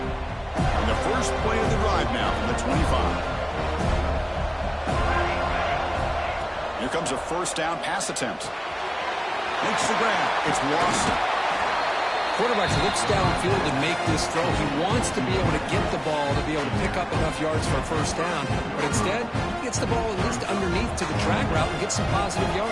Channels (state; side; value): identical; both; correlation 1.00